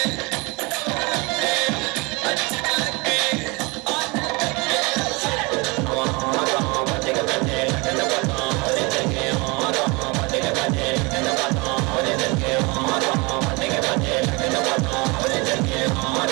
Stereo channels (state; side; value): quieter; left; 27.0 dB